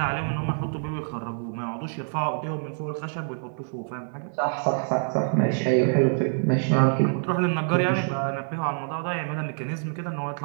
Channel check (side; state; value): left; silent; 61 dB below the other